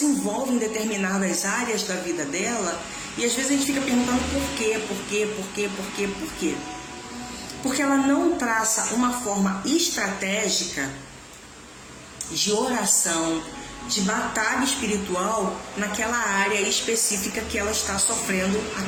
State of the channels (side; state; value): both; identical; correlation 1.00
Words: em determinadas áreas da vida dela e às vezes a gente fica perguntando por quê? Porque ela não traça uma forma estratégica de oração, de batalha espiritual naquela área específica que ela está sofrendo,